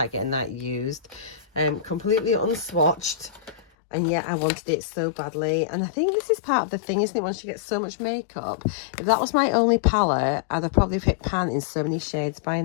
getting that used. Completely unswatched. And yet I wanted it so badly. And I think this is part of the thing, isn't it? Once you get so much makeup. If that was my only palette, I'd have probably hit pan in so many shades by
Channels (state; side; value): drops out; right; at 3.7 s